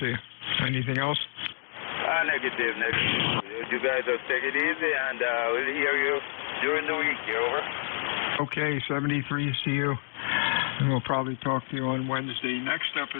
you. Anything else? Negative. You guys just take it easy, and we'll hear you during the week. Over. Okay, 73, see you. And we'll probably talk to you on Wednesday. Next up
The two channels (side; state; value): right; silent; digital silence